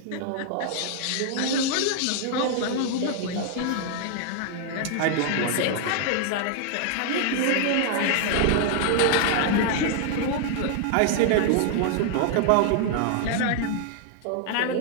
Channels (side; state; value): both; different; correlation 0.00